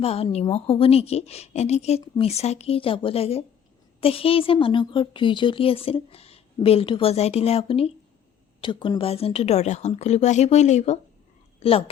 বা নিমখ হ'ব নেকি, এনেকৈ মিছাকৈ যাব লাগে। সেই যে মানুহ ঘৰত জুই জ্বলি আছিল, বেলটো বজাই দিলে আপুনি, তো কোনোবা এজনতো দৰজাখন খুলিব আহিবই লাগিব।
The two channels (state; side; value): quieter; right; 8.7 dB